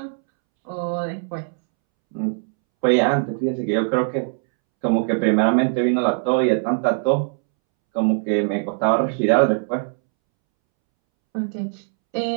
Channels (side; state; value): left; silent; 65 dB below the other